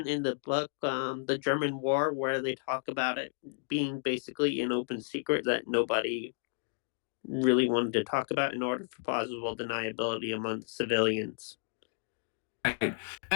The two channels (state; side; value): silent; right; digital silence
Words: in the book, The German War, where they talk about it being basically an open secret that nobody really wanted to talk about in order for plausible deniability among the civilians. Right.